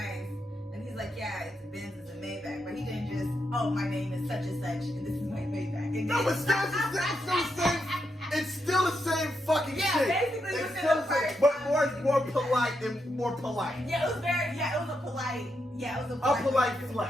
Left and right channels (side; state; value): both; normal; correlation 0.82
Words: And he's like, yeah, it's a Benz, it's a Maybach. But he didn't just, oh, my name is such and such, and this is my Maybach. No, but it's still the same fucking shit. Yeah, basically it's within still the first but more polite and more polite. Yeah, it was a polite